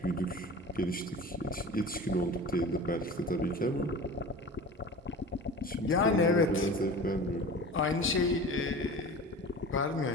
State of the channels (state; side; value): normal; both; correlation 0.36